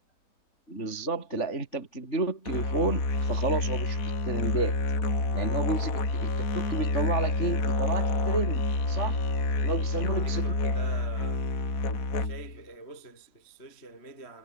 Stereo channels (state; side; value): late; right; 3.5 ms